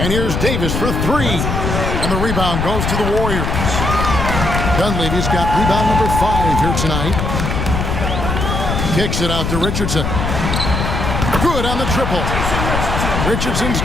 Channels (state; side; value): noise; left; rumble, 1 dB below the sound